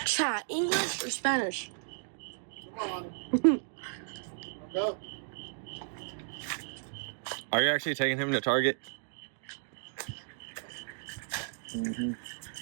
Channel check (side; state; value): left; silent; digital silence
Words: Chat, English or Spanish? Come on. Go. Are you actually taking him to Target? Mm-hmm.